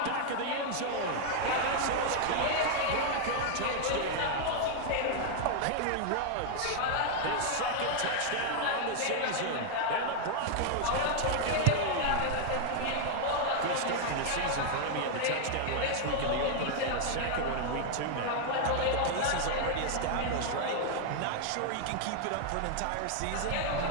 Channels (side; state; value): both; different; correlation 0.00